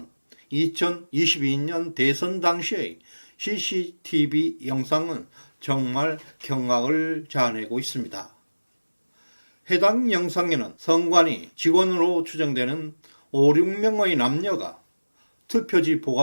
2022년 대선 당시의 CCTV 영상은 정말 경악을 자아내고 있습니다. 해당 영상에는 성관위 직원으로 추정되는 5, 6명의 남녀가 투표지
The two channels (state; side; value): inverted; both; correlation -1.00